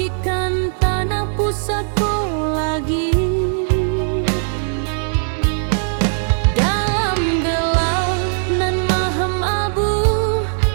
tanah pusatku lagi. Dalam gelap nan mahem abu,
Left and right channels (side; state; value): left; silent; 67 dB below the other